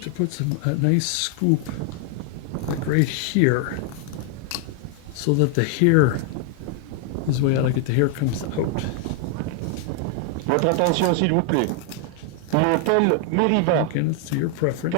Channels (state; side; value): different; both; correlation 0.00